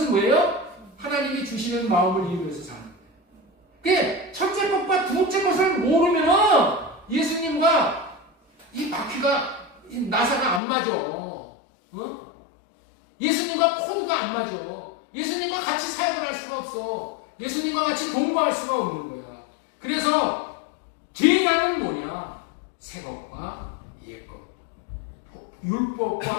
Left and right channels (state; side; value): drops out; right; at 10.6 s